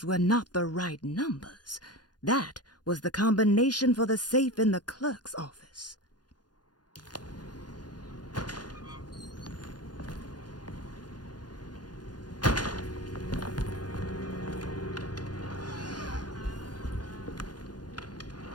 were not the right numbers. That was the combination for the safe in the clerk's office.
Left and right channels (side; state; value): right; late; 0.70 ms